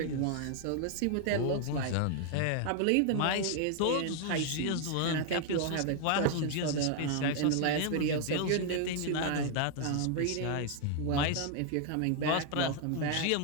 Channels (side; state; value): both; different; correlation 0.00